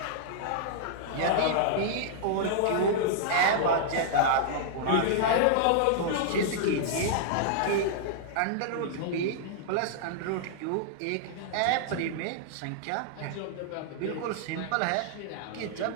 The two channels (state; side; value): different; both; correlation -0.02